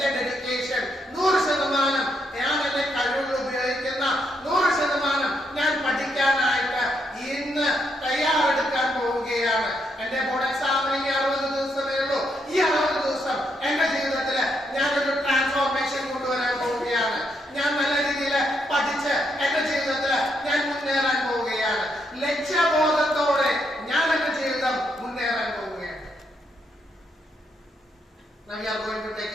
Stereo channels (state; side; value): normal; both; correlation 0.78